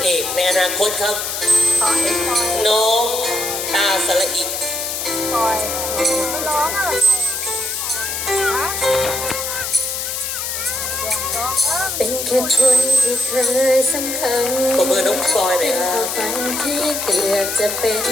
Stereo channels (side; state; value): left; noise; hiss, 3 dB below the sound